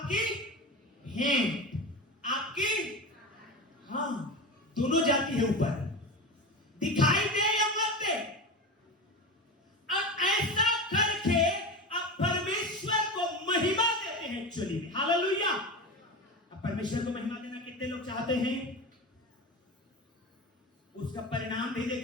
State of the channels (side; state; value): both; normal; correlation 0.25